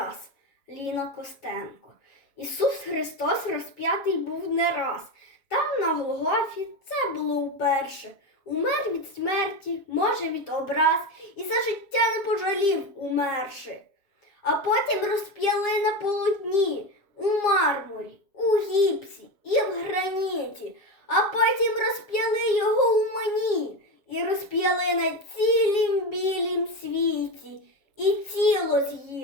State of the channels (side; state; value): right; late; 7.1 ms